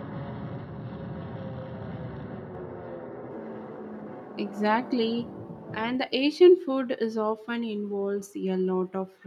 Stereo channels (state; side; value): identical; both; correlation 1.00